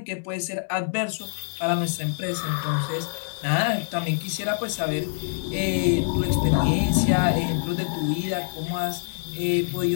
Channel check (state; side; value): silent; right; digital silence